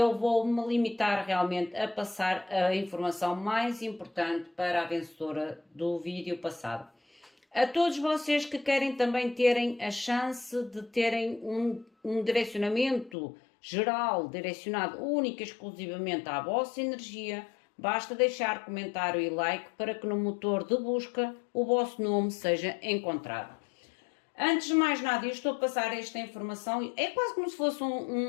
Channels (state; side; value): drops out; right; at 13.2 s